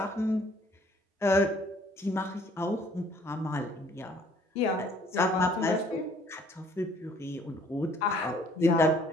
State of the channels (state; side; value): normal; both; correlation 0.59